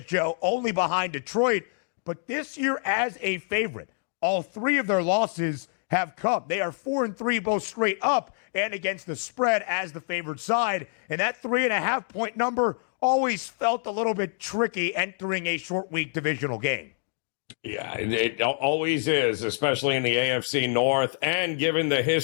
Joe, only behind Detroit. But this year as a favorite, all 3 of their losses have come. They are 4-3 both straight up and against the spread as the favored side. And that 3.5-point number always felt a little bit tricky entering a short week divisional game. Yeah, it always is, especially in the AFC North, and given the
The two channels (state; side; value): silent; right; digital silence